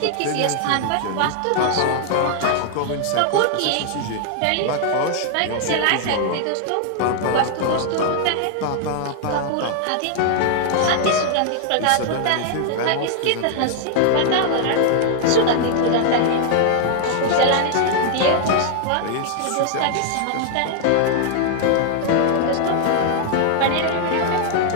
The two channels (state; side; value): different; both; correlation 0.00